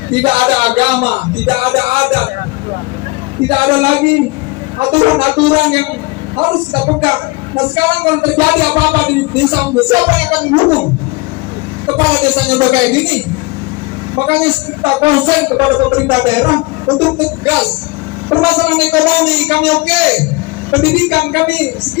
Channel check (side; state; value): right; quieter; 25.1 dB